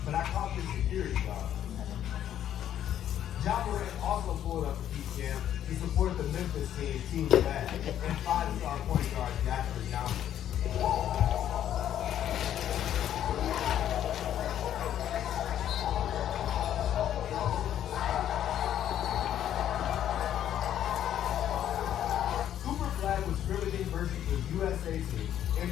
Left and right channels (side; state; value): right; quieter; 10.8 dB